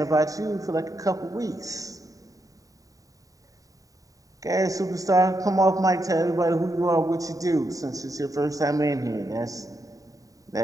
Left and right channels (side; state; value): left; late; 0.16 ms